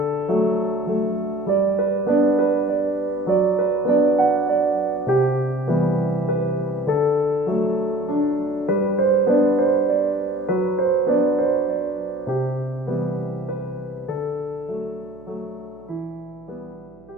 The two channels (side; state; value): right; noise; hum, 27 dB below the sound